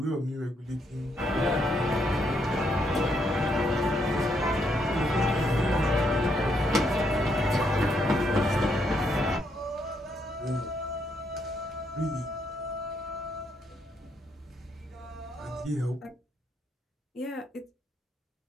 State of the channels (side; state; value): both; normal; correlation 0.75